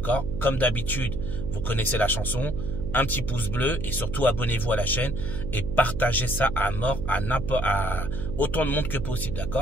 Comme d'habitude, vous connaissez la chanson. Un petit pouce bleu et surtout abonnez-vous à la chaîne et partagez ça à mort à autant de monde que possible.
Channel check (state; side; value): noise; right; hum, 6 dB below the sound